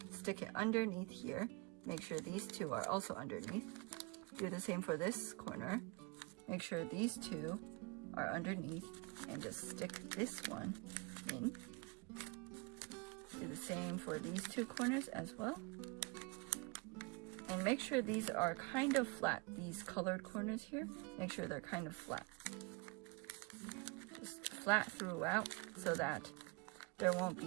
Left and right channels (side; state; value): left; quieter; 28.7 dB